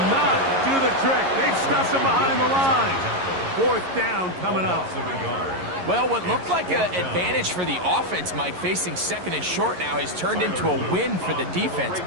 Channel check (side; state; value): left; late; 11 ms